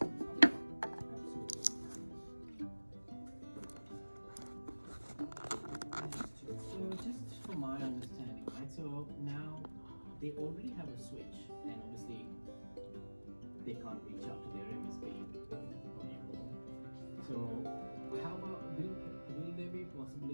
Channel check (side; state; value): both; inverted; correlation -1.00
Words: So just from my understanding, right? So now they already have a switch, and obviously they can't reach out to their MSP anymore. So how about will there be a